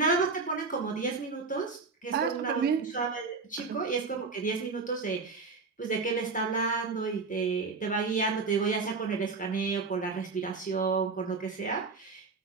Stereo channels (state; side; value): quieter; left; 4.4 dB